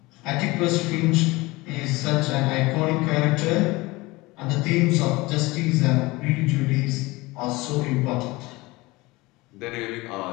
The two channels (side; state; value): right; quieter; 22.0 dB